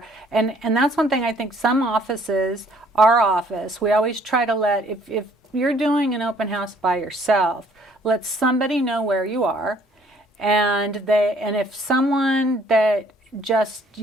and that's one thing I think some offices, our office, we always try to let, if you're doing an open house by yourself, let somebody know where you are, and if someone that just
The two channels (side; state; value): both; normal; correlation 0.61